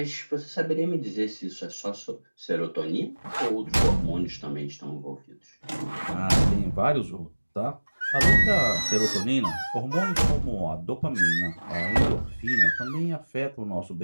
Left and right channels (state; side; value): inverted; both; correlation -1.00